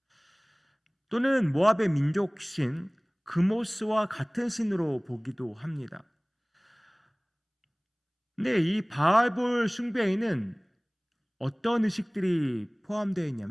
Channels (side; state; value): both; identical; correlation 1.00